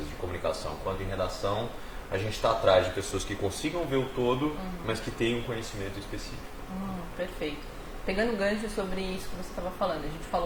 de comunicação quanto em redação, a gente está atrás de pessoas que consigam ver o todo, mas que tenham um conhecimento específico. Perfeito. Pegando o gancho sobre isso que você estava falando, a gente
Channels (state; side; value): identical; both; correlation 1.00